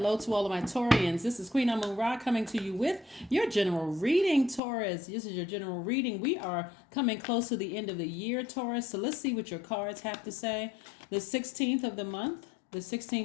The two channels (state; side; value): drops out; right; at 4.6 s